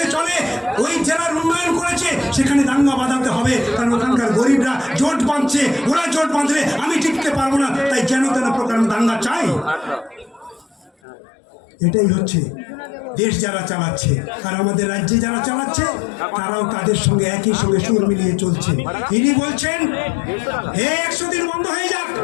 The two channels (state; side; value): drops out; right; at 10.9 s